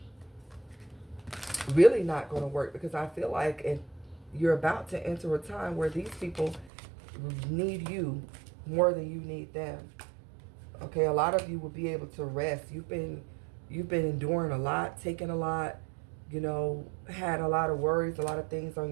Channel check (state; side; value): drops out; left; at 6.7 s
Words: really not going to work, because I feel like you're about to enter a time where these people need you more than you need them. Okay, a lot of you will be able to rest. You've been enduring a lot, taking a lot, you know, had a lot of worries, a lot of things on